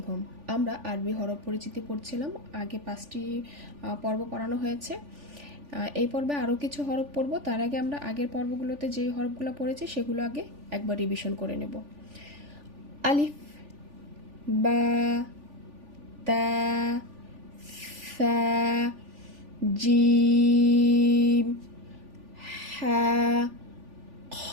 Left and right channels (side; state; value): left; late; 3.4 ms